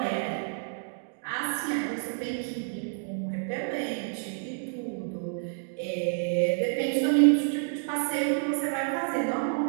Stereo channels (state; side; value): silent; left; digital silence